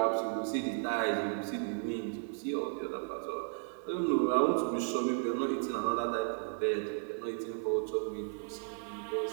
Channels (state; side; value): silent; left; 55 dB below the other